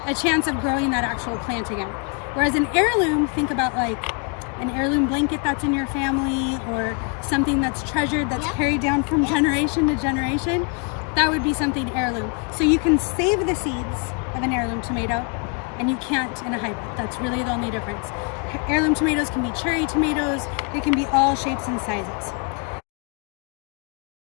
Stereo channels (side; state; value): right; quieter; 37.1 dB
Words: a chance of growing that actual plant again. Whereas an heirloom, think about like an heirloom blanket that's in your family or something that's treasured, that's carried down from generation to generation. That would be something heirloom. So you can save the seeds of an heirloom tomato and you can't in a hybrid. That's really the only difference. Heirloom tomatoes can be cherry tomatoes. They can be all shapes and sizes.